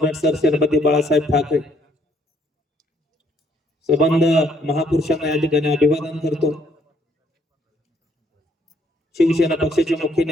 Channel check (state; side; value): normal; both; correlation 0.67